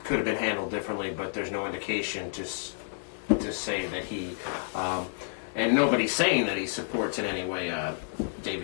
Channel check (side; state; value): right; silent; 58 dB below the other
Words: could have been handled differently, but there's no indication to say that he, and nobody's saying that he supports in any way